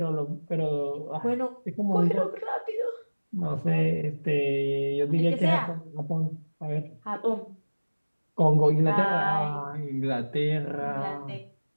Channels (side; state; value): both; inverted; correlation -1.00